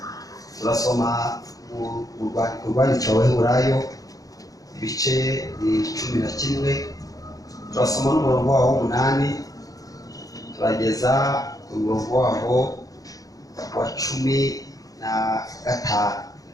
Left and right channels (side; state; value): right; late; 0.17 ms